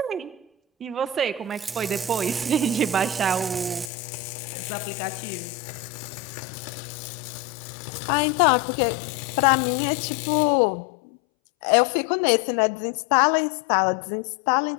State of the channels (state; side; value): drops out; right; at 3.9 s